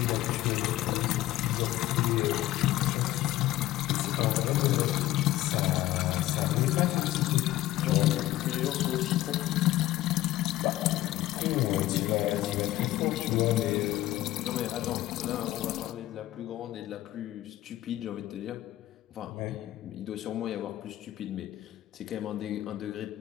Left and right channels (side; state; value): right; quieter; 15.3 dB